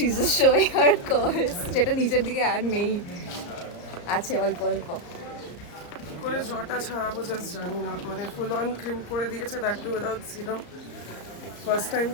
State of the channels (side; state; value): right; late; 34 ms